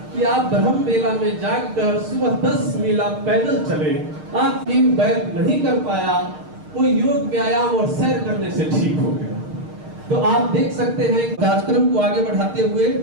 कि आप ब्रह्म बेला में जागकर सुबह 10 मील आप पैदल चले। आप टीम बैर नहीं कर पाया, कोई योग व्यायाम और सैर करने से ठीक हो गया। तो आप देख सकते हैं कार्यक्रम को आगे बढ़ाते हुए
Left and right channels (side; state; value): left; late; 6.5 ms